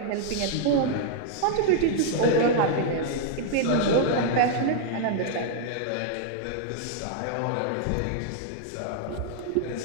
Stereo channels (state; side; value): different; both; correlation -0.01